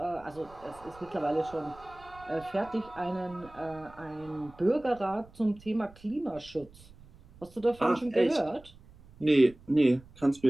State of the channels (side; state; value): right; noise; rumble, 23 dB below the sound